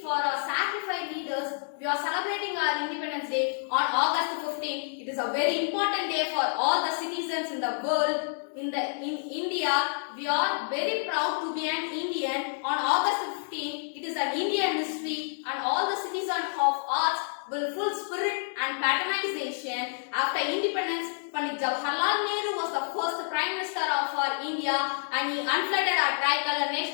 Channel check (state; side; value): silent; right; 59 dB below the other